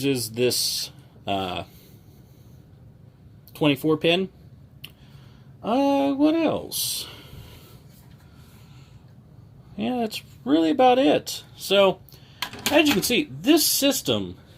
this 24 pin. What else? Yeah, that's really about it. So, as you can see, this system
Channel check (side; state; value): both; identical; correlation 1.00